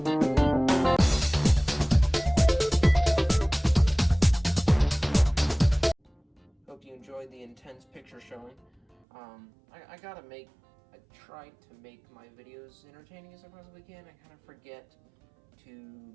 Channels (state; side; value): drops out; left; at 9.0 s